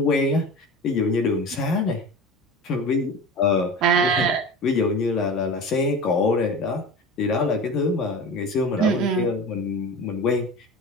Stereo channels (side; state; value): both; normal; correlation 0.33